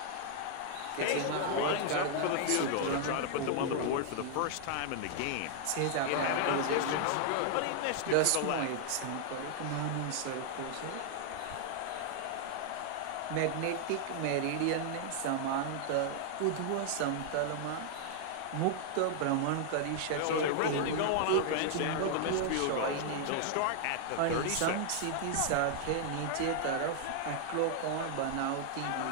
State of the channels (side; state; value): both; different; correlation 0.00